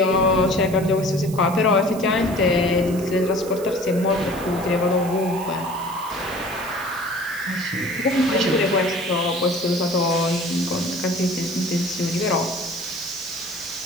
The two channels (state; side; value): noise; right; hiss, 16 dB below the sound